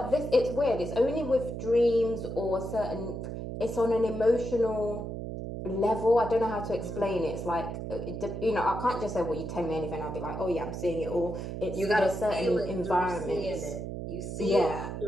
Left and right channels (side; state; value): right; noise; hum, 6 dB below the sound